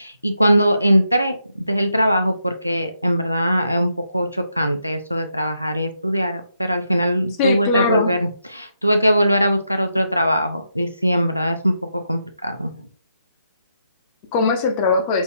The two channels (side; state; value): both; inverted; correlation -0.81